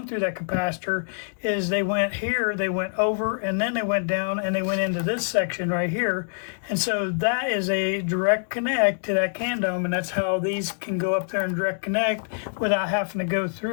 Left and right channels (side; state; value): right; silent; digital silence